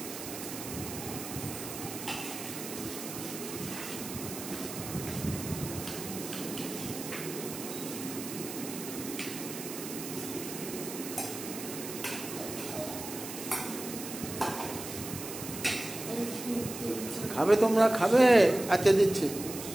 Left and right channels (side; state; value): right; noise; hiss, 9 dB below the sound